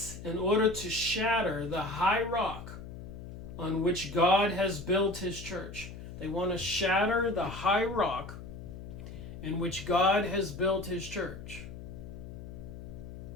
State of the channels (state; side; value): noise; left; hum, 11 dB below the sound